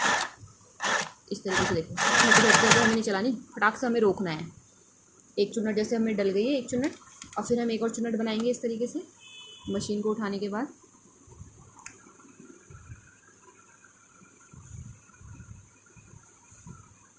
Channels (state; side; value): identical; both; correlation 1.00